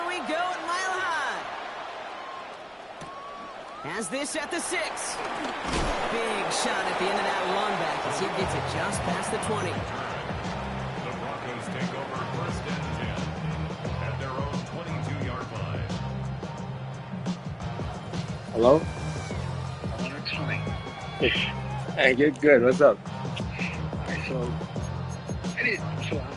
we go at Mile High. Has this at the 6. Big shot at the end of that run back as he gets it just past the 20. The Broncos take over first and 10 at their own 22-yard line. Hello? Hey, good. What's up? Alright, so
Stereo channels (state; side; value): identical; both; correlation 1.00